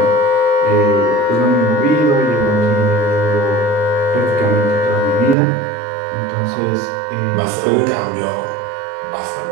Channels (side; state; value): left; drops out; at 5.4 s